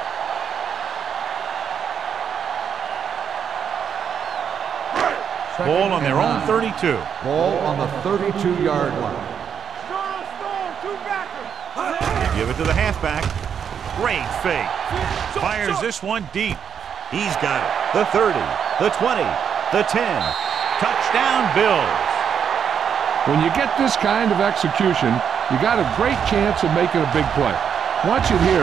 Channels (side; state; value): left; quieter; 7.7 dB